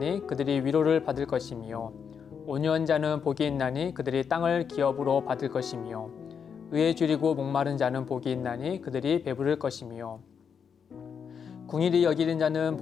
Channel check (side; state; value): right; quieter; 6.9 dB